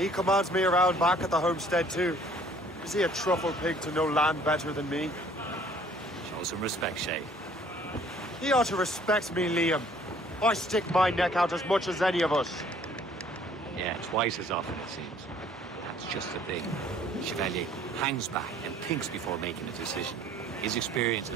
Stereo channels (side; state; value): both; normal; correlation 0.57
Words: commands me around back at the homestead too. Is he a truffle pig to know land better than me? Show some respect, Shay. He ought to respect me, Liam. I stick my neck out as much as any of us. Yeah, twice as often, it seems. That's just the thing. Chevalier hangs back and thinks before making a decision. His experience